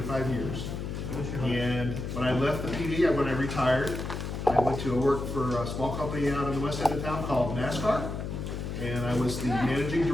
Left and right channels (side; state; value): left; noise; hum, 5 dB below the sound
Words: years. And when I left the PD, when I retired, I went to work for a small company out in the west end of town called NASCAR. And I was the managing